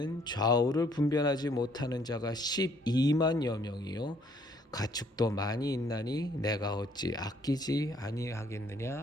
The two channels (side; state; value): both; normal; correlation 0.64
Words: 좌우를 분별하지 못하는 자가 12만여 명이요 가축도 많이 있나니 내가 어찌 아끼지